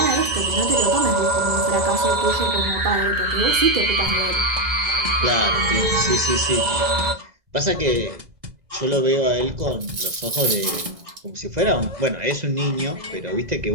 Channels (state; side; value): late; left; 2.0 ms